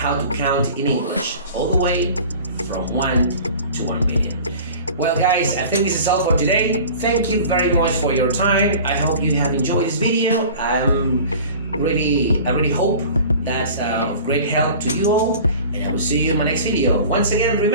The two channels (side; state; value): both; inverted; correlation -0.41